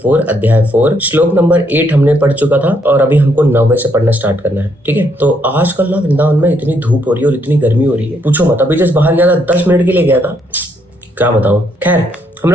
अध्याय 4 श्लोक नंबर 8 हमने पढ़ चुका था और अभी हमको 9वें से पढ़ना स्टार्ट करना है। ठीक है, तो आजकल ना वृंदावन में इतनी धूप हो रही है और इतनी गर्मी हो रही है, पूछो मत। अभी जस्ट बाहर गया था, 10 मिनट के लिए गया था, क्या बताऊं। खैर, हम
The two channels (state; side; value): normal; both; correlation 0.72